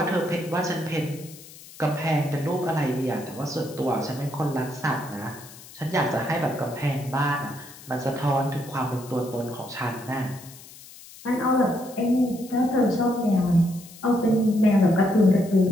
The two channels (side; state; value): left; noise; hiss, 19 dB below the sound